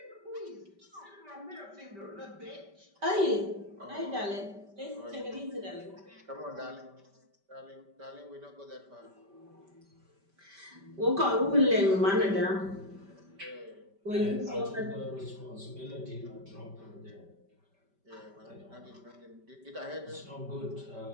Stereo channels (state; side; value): late; left; 5.1 ms